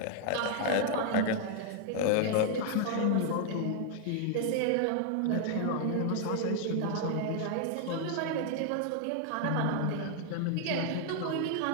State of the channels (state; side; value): different; both; correlation 0.00